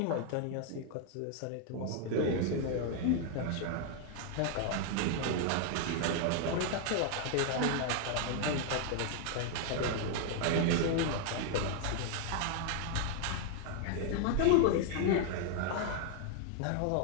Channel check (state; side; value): different; both; correlation 0.00